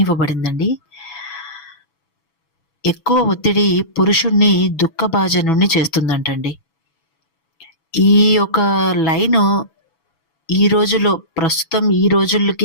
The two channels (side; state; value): right; late; 7.0 ms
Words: ఇవ్వబడిందండి. ఎక్కువ ఒత్తిడి పురుషుడిని దుఃఖభాజనుడిని చేస్తుందంటండి. ఈ యొక్క లైను ఈ రోజుల్లో ప్రస్తుతం ఈ